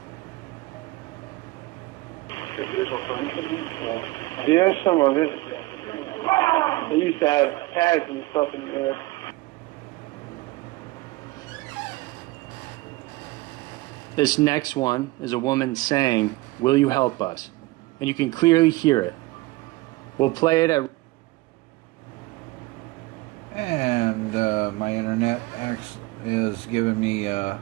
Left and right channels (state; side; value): quieter; left; 20.7 dB